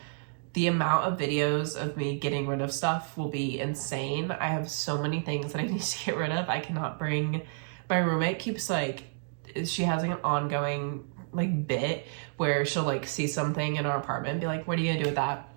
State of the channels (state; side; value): silent; left; digital silence